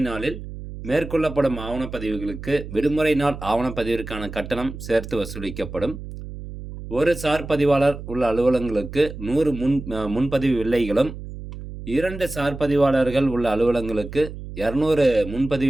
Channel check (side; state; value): right; noise; hum, 11 dB below the sound